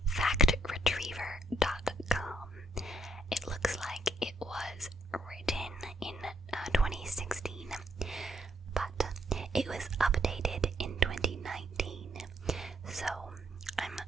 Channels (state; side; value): normal; both; correlation 0.70